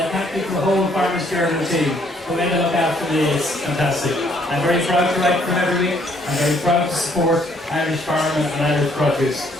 thank you for the whole Farmers Journal team who made it look after me. It's fantastic. I'm very proud to write for them every week. I'm very proud to support Irish farming and Irish produce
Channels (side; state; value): both; normal; correlation 0.66